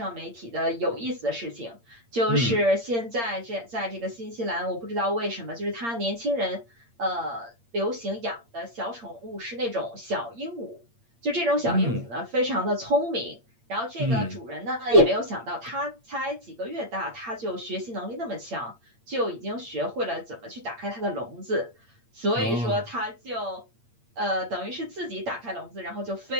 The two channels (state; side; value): late; left; 8.6 ms